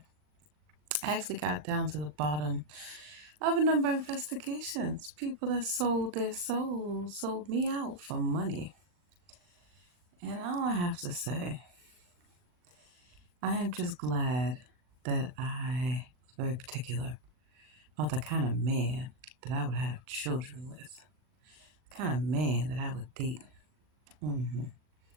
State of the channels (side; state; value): left; late; 40 ms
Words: actually got down to the bottom of a number of investigations. People that sold their souls, sold me out for money. And all I have to say, I am just glad that I was very particular about the kind of man that I would have children with, the kind of man that I would date. hmm